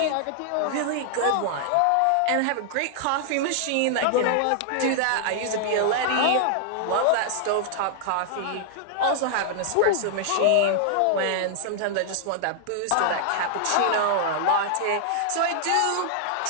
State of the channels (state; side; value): different; both; correlation -0.01